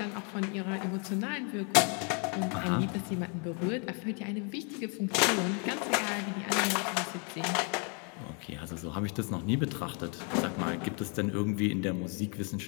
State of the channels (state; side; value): quieter; right; 37.5 dB